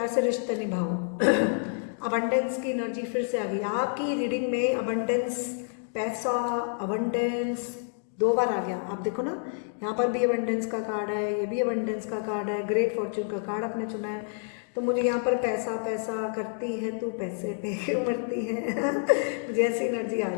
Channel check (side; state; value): right; silent; 59 dB below the other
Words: से रिश्ता निभाओ। अबंडेंस की एनर्जी फिर से आ गई आपकी रीडिंग में। अबंडेंस, पैसा, अबंडेंस 2 बार आ गया। आप देखो ना, यहाँ पर भी अबंडेंस का कार्ड है, ये भी अबंडेंस का कार्ड है, ग्रेट फॉर्च्यून का कार्ड आपने चुना है। तो मुझे यहाँ पर पैसा पैसा करती है तू, पैसे पे क्यों मरती है मुझे ऐसी एनर्जी आ